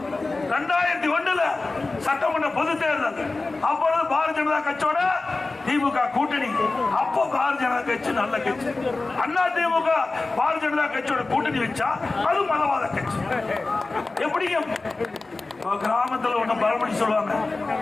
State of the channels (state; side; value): quieter; right; 3.5 dB